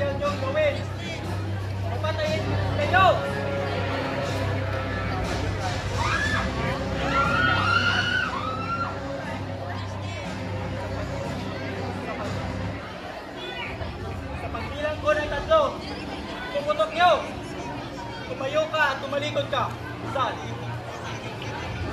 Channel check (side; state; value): both; identical; correlation 1.00